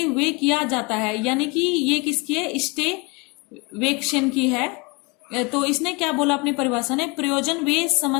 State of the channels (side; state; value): right; quieter; 28.5 dB